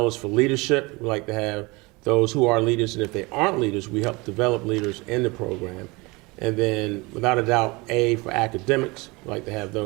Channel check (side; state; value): left; quieter; 24.9 dB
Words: is for leadership. We like to have those who are leaders, and if they aren't leaders, we help develop leaders in the program. And then, without a doubt, A for academics. We like to have